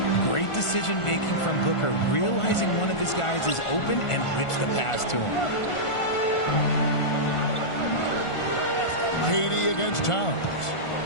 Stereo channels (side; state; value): right; late; 1.5 ms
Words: Great decision making from Booker, realizing one of his guys is open and whips the pass to him. KD against Towns.